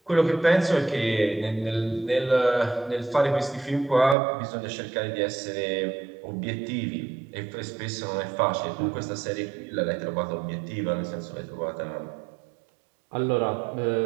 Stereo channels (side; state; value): left; drops out; at 4.2 s